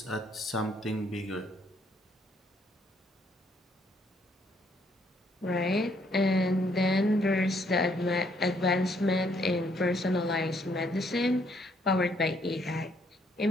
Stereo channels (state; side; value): normal; both; correlation 0.69